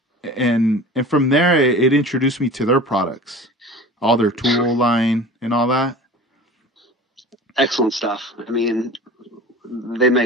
and from there it introduced me to their products, all their tool line and all that. Excellent stuff. I mean, they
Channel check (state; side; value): normal; both; correlation 0.39